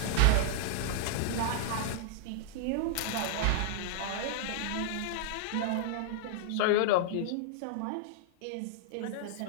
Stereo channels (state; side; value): different; both; correlation -0.01